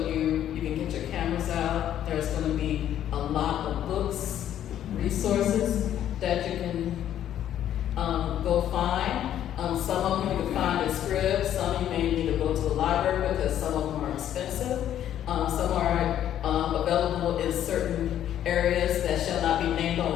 you, you can get your cameras out. There's going to be a lot of books, resources that you can go find. Some of them you can find in scripts. Some you may need to go to the library because some of them are expensive. Some are available in certain areas that shall not be named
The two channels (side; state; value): right; quieter; 11.0 dB